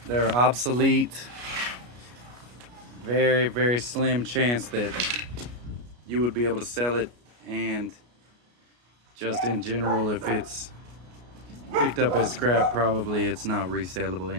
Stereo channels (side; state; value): left; late; 33 ms